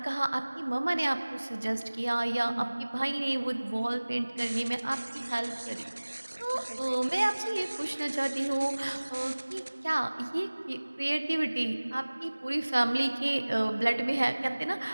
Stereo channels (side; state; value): both; inverted; correlation -1.00